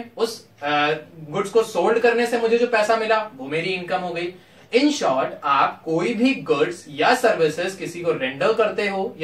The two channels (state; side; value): identical; both; correlation 1.00